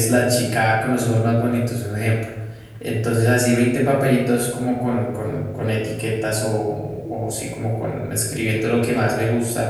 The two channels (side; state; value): both; identical; correlation 1.00